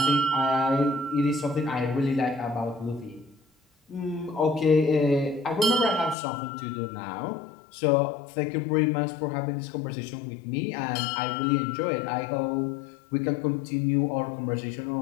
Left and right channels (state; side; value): drops out; right; at 6.2 s